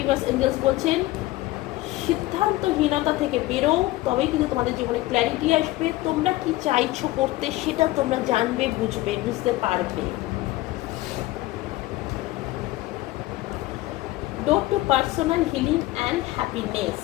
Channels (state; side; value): quieter; right; 18.0 dB